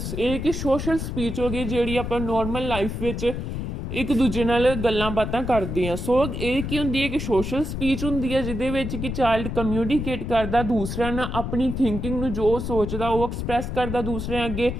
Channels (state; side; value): noise; left; rumble, 4 dB below the sound